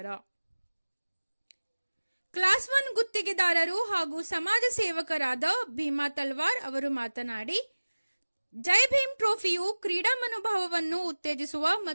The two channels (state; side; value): inverted; both; correlation -1.00